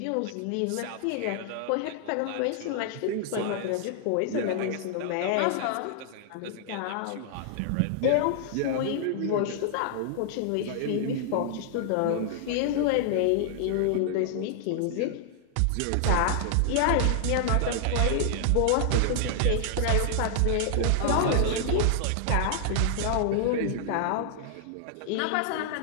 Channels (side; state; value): both; different; correlation 0.00